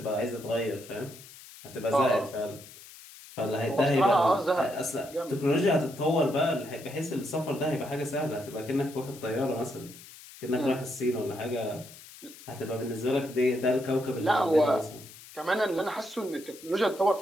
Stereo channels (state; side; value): noise; left; hiss, 18 dB below the sound